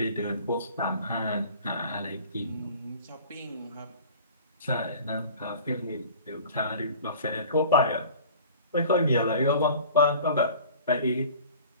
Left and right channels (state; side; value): inverted; both; correlation -0.45